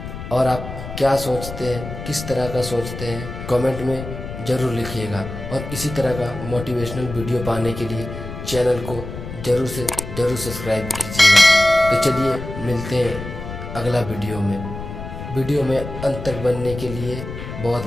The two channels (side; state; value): left; noise; rumble, 9 dB below the sound